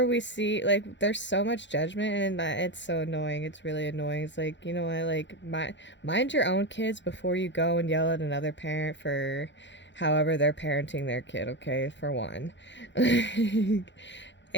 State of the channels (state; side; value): late; right; 0.53 ms